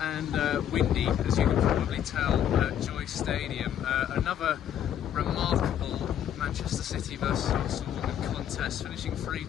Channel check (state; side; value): quieter; right; 10.0 dB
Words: windy, as you can probably tell, at Joie Stadium. Another remarkable Manchester City versus Arsenal contest, finishing